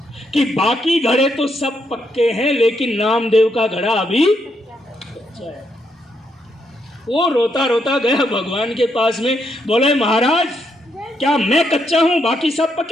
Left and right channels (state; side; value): normal; both; correlation 0.78